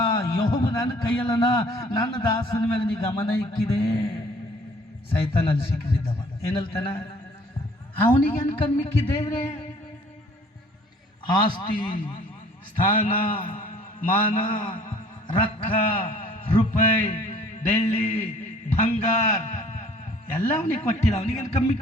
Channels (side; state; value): both; normal; correlation 0.55